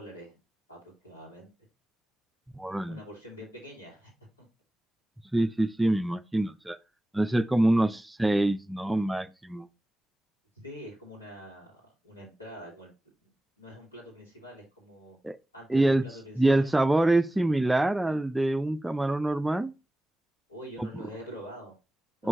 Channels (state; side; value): normal; both; correlation 0.96